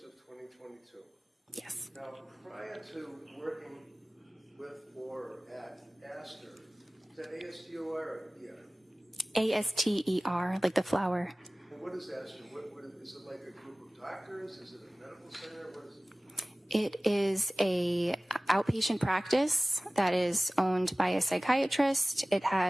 of 2022. Yes. Now, prior to working with or at Astor, is that ASTOR or ER? ASTER, like the flower. And what is Astor? What is it, like a group of doctors? Is it a medical center? What is it? It is a outpatient practice that is owned by a psychiatrist. It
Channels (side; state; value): both; normal; correlation 0.98